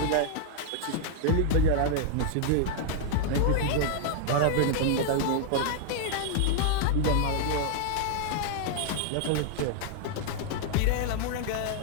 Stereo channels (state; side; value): different; both; correlation 0.00